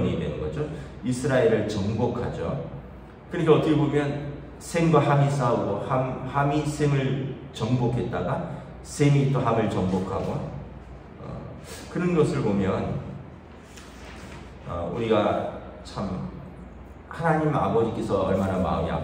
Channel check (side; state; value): both; identical; correlation 1.00